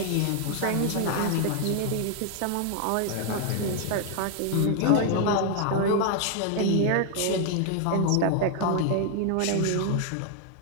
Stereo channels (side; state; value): both; different; correlation 0.00